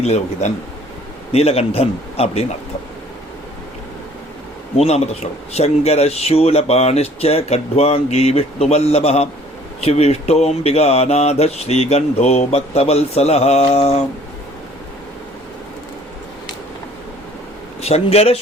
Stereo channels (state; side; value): normal; both; correlation 0.55